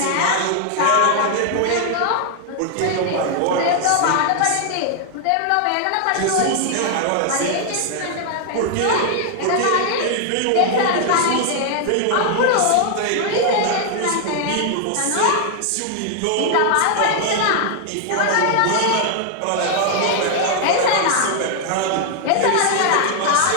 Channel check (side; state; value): both; different; correlation 0.00